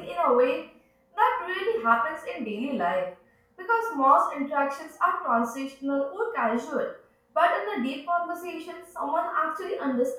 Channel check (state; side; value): identical; both; correlation 1.00